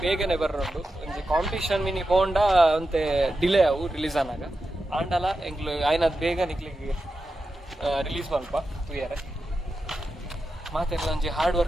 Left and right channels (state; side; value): normal; both; correlation 0.90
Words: ಬೇಗನೆ ಬರ್ರೋಂಡು ಒಂಜಿ ಕಾಂಪಿಟೇಷನ್ ಮಿನಿ ಪೋಂಡ ಅಂತೆ ಡಿಲೇ ಅವು ರಿಲೀಸ್ ಆನಾಗ ಆಂಡಲ ಎಂಕ್ಲು ಆಯ್ನದು ಬೇಗ ನಿಕ್ಲಿಗೆ ರಿಲೀಸ್ ಮಲ್ಪ ತುಯರೆ ಮಾತೆಲ್ಲ ಒಂಜಿ ಹಾರ್ಡ್